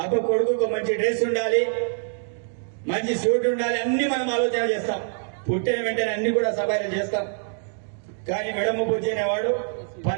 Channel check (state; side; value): silent; left; digital silence